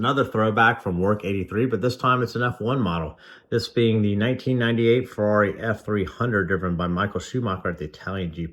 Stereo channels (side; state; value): both; identical; correlation 1.00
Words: throwback from Werk83, but this time it's an F1 model. This being the 1998 Ferrari F300 driven by Michael Schumacher at the Italian